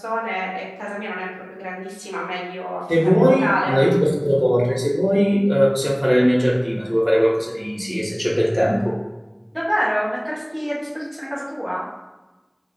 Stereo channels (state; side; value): identical; both; correlation 1.00